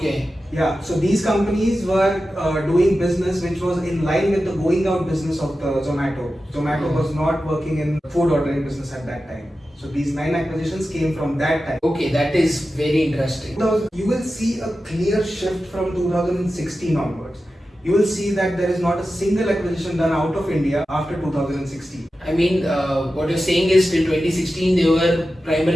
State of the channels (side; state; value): both; normal; correlation 0.93